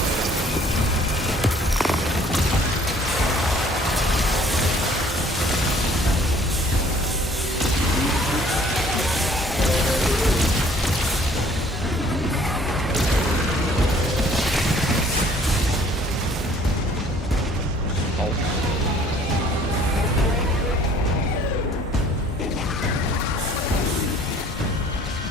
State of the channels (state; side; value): normal; both; correlation 0.56